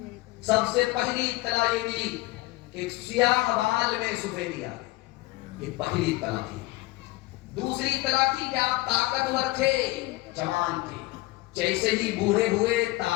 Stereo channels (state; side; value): quieter; right; 20.1 dB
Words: سب سے پہلی اطلاع یہ ملی کہ سیاہ بال میں سفیدی آ گئی, یہ پہلی اطلاع تھی. دوسری اطلاع تھی کہ آپ طاقتور تھے, جوان تھے, جیسے ہی بوڑھے ہوئے